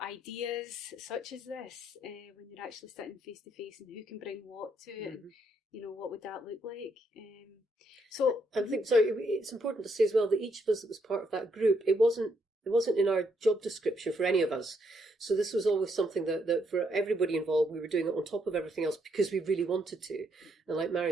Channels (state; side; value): normal; both; correlation 0.74